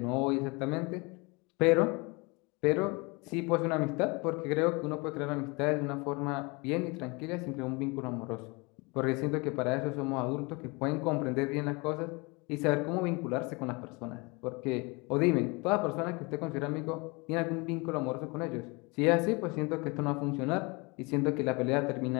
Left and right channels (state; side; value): quieter; right; 27.8 dB